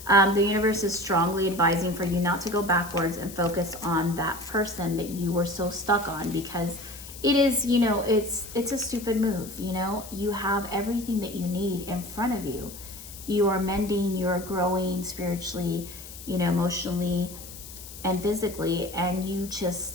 The universe is strongly advising for you not to go backwards and focus on that person that you were so stuck on, because it is, you know, it's a stupid move. You know, you have everything that you need in front of you. You are mending, you're growing spiritually, you know, emotionally and physically, and you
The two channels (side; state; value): left; noise; hiss, 14 dB below the sound